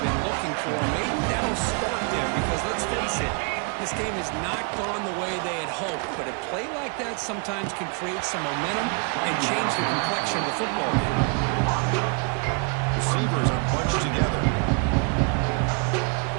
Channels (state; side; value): quieter; left; 37.0 dB